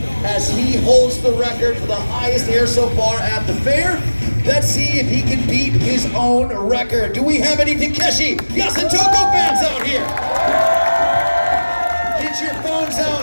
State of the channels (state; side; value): inverted; both; correlation -1.00